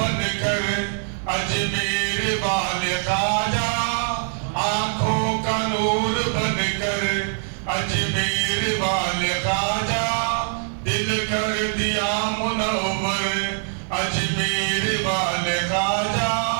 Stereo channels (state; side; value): silent; left; digital silence